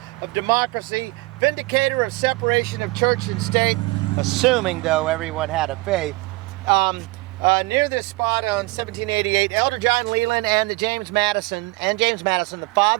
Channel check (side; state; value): left; quieter; 23.0 dB